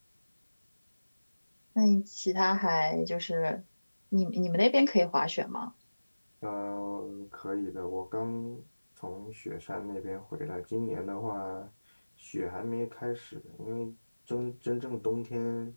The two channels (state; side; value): inverted; both; correlation -1.00